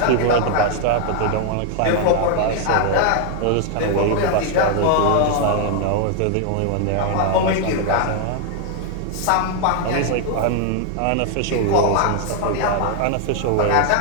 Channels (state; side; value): different; both; correlation 0.00